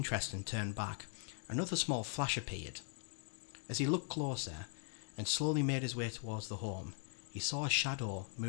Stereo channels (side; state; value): right; silent; 51 dB below the other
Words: and turn back, another small flash appeared. As he looked closer and slowly made his way towards the home, he saw a shadow